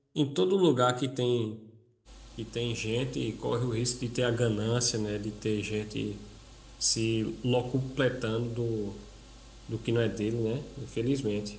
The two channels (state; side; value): identical; both; correlation 1.00